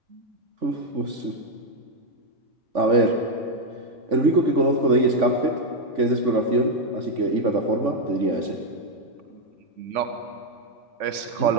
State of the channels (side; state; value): left; late; 3.5 ms